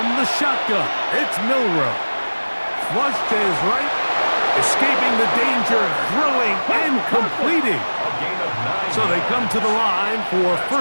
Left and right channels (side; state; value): both; inverted; correlation -1.00